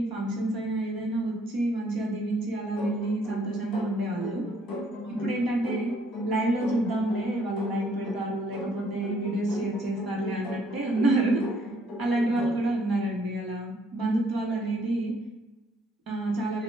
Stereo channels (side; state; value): both; normal; correlation 0.65